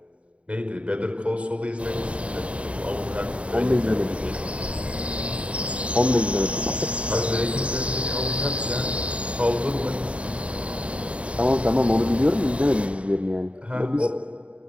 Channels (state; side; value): late; left; 0.062 ms